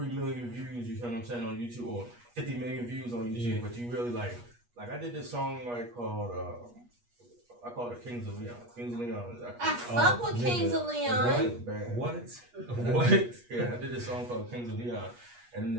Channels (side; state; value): left; late; 8.3 ms